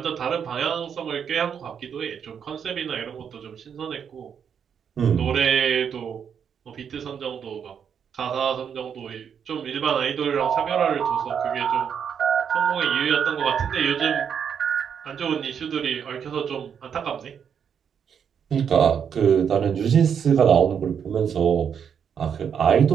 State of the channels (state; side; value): quieter; left; 7.6 dB